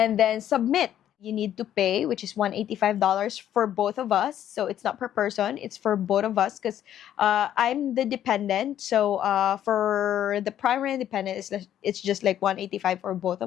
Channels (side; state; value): right; quieter; 11.0 dB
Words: then submit. You need to pay, which is $185 for both of us. So it's not per person, it's for both of us because I'm the dependent. So for the primary and dependent, it's just like $185 for both